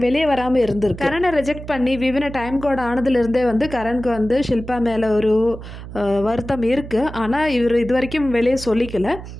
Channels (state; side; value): noise; right; hum, 12 dB below the sound